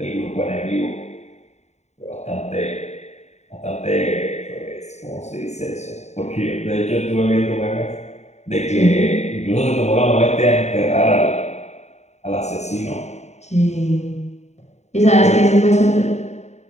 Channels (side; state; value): right; late; 0.32 ms